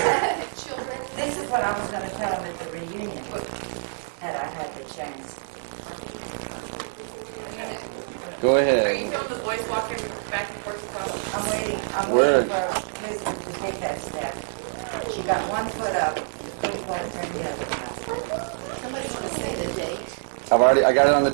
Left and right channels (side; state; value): left; silent; digital silence